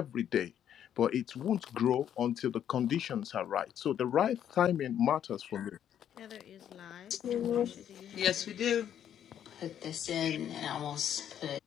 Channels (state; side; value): quieter; right; 9.8 dB